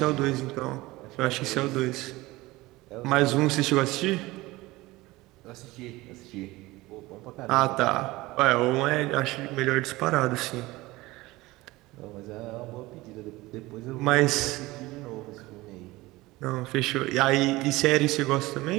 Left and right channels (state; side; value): quieter; left; 19.9 dB